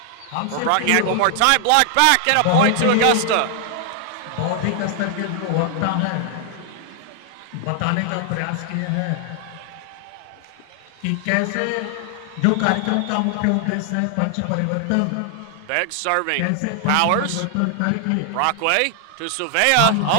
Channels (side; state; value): both; different; correlation 0.00